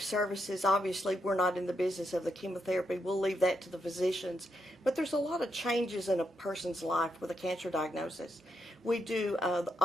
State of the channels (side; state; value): both; normal; correlation 0.81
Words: services, obviously, we're not in the business of the chemotherapy. We'll leave that to the physicians. But there's a lot of changes in a person's life with a cancer diagnosis. We do,